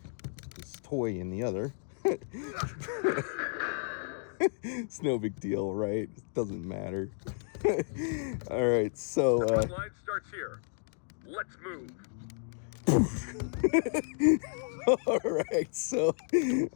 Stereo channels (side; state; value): right; silent; 56 dB below the other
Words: this toy in the other. It's no big deal, right? It doesn't matter. All right, so The front line starts here. Let's move. all right, so